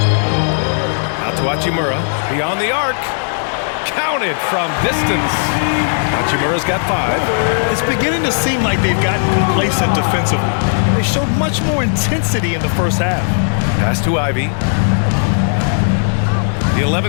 Out to Hachimura. Beyond the arc. Counted from distance. Hachimura's got 5. It's beginning to seem like they've gotten complacent defensively. They showed much more intensity in the first half. Pass to Ivy. The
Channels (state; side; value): silent; right; digital silence